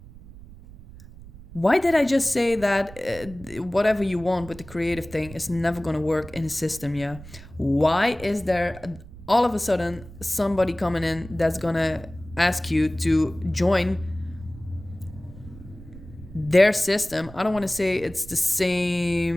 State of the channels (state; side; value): noise; right; rumble, 18 dB below the sound